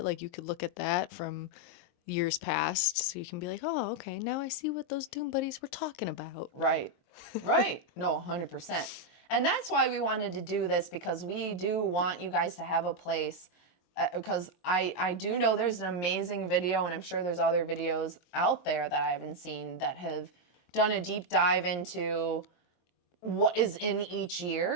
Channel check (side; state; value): right; late; 23 ms